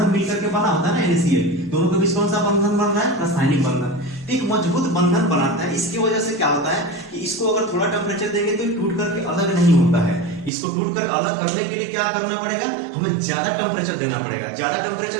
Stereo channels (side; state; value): left; drops out; at 10.5 s